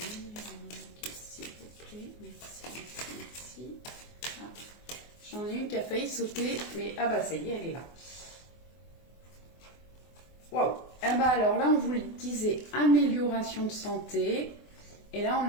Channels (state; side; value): late; right; 24 ms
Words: numéro 1, s'il vous plaît? Merci, merci. Ah, j'en ai une qui a failli sauter, mais ah bah ça y est, elle est là. Waouh! Eh ben bah alors là, on vous le disait, amélioration de santé. Et là,